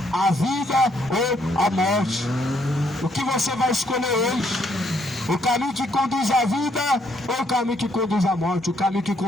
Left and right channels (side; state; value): both; normal; correlation 0.71